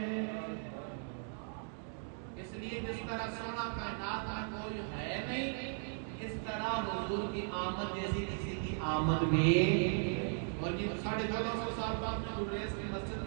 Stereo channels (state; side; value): silent; left; 53 dB below the other